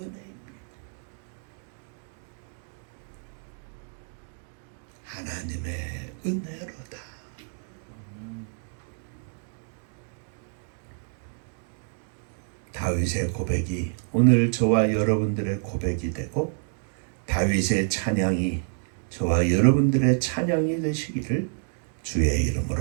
하나님의 은혜로다. 다윗의 고백이 오늘 저와 여러분들의 고백이 되고, 다윗의 찬양이 저와 여러분들의 찬양이 되시기를 주의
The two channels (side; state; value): left; silent; digital silence